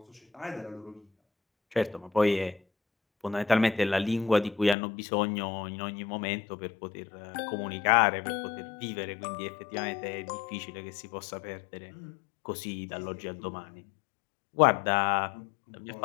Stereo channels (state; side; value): drops out; right; at 4.8 s